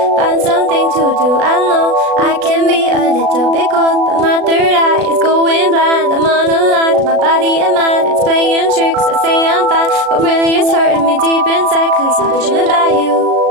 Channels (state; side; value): late; left; 36 ms